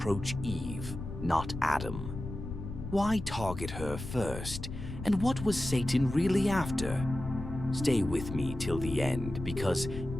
Eve, not Adam? Why target her first? And what was Satan really after? Stay with me till the end, because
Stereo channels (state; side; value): noise; left; rumble, 8 dB below the sound